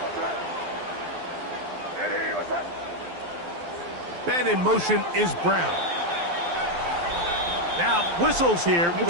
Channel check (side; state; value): left; late; 12 ms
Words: Man in motion is Brown. Now, whistles here. It